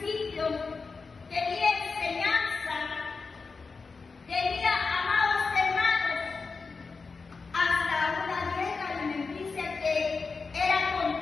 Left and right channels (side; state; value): right; quieter; 4.5 dB